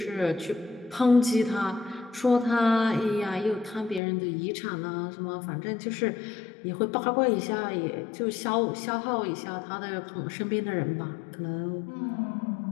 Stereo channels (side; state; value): right; drops out; at 4.0 s